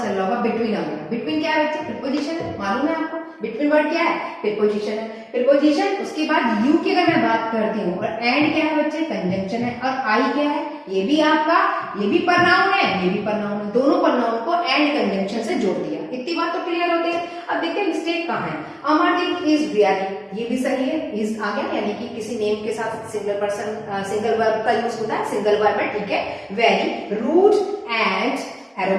रहा होगा बिटवीन आ गया। बिटवीन क्या है बच्चे? प्रीपोजिशन है, मालूम है आपको। बिटवीन वर्ड क्या है? प्रीपोजिशन है। प्रीपोजिशन, उसके बाद यू की अगर मैं बात करती हूँ, और एंड क्या है बच्चे? कंजंक्शन है। और आई क्या है? ये भी आपका, ये भी प्रनाउन है, ये भी प्रनाउन है। दोनों प्रनाउन को एंड कंजंक्शन से जोड़ दिया। इतनी बात तो क्लियर होती है। अब देखते हैं मिस्टेक कहाँ है। अमरदीप इज वेरी, ये भी सही है, इज आ गया, यानी कि किसी नेम के साथ सिंगल पर्सन सिंगल वर्ब का यूज होता है, सिंगल वर्ब है, ठीक है। वेरी, रूड एंड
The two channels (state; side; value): identical; both; correlation 1.00